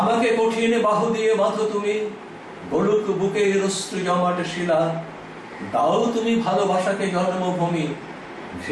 কঠিন বাহু দিয়ে বাঁধো তুমি, বলুক বুকে অশ্রু জমাট শিলা, দাও তুমি ভালোবাসাকে জন্মভূমি,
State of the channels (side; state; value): both; identical; correlation 1.00